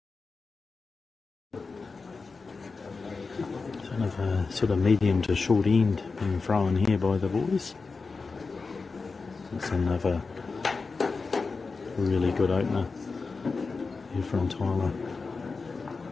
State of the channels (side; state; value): right; quieter; 4.3 dB